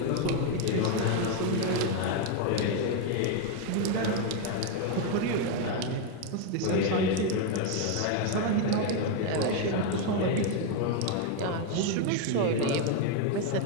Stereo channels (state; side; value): different; both; correlation 0.01